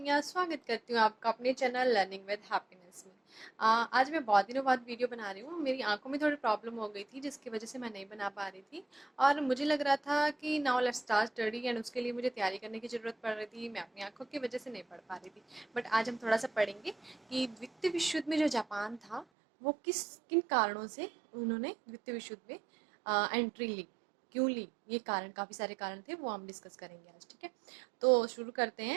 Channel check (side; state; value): left; drops out; at 19.2 s